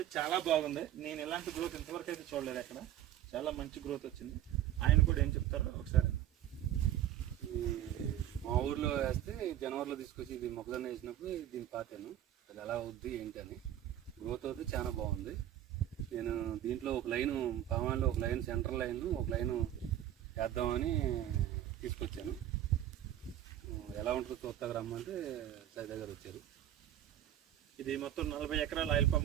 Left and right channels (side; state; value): left; quieter; 11.8 dB